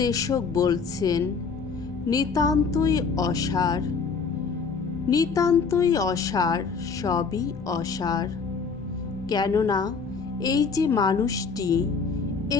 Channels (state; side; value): quieter; right; 5.2 dB